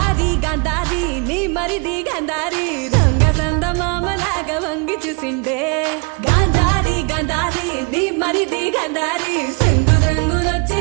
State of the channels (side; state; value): left; quieter; 32.1 dB